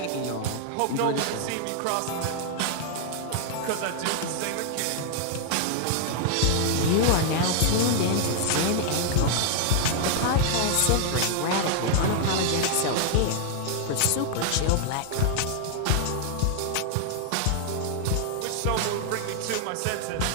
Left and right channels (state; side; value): different; both; correlation 0.00